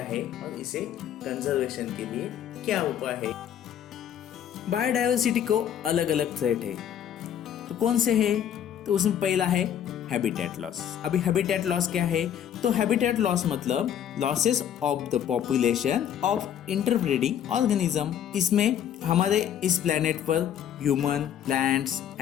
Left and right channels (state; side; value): quieter; right; 9.7 dB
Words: है और इसे कंजर्वेशन के लिए क्या उपाय है। बायोडाइवर्सिटी को अलग अलग थ्रेट है, तो कौन से है? तो उसमें पहला है हैबिटेट लॉस। अभी हैबिटेट लॉस क्या है? तो हैबिटेट लॉस मतलब losses of the population of interbreeding organism. इसमें हमारे इस प्लेनेट पर human, plants,